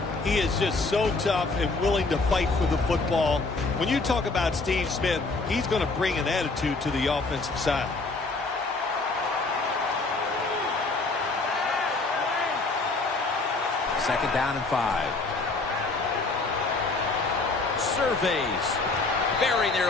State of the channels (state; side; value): quieter; right; 3.6 dB